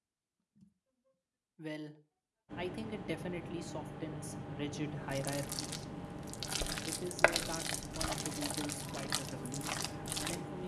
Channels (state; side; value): identical; both; correlation 1.00